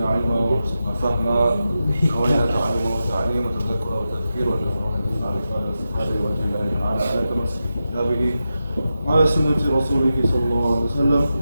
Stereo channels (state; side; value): inverted; both; correlation -0.89